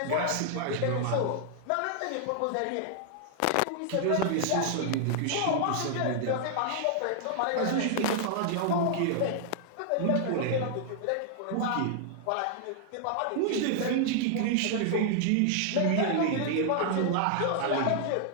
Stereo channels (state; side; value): different; both; correlation 0.00